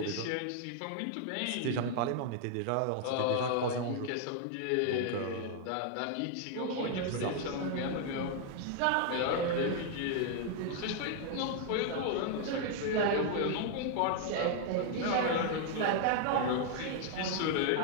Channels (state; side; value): different; both; correlation 0.00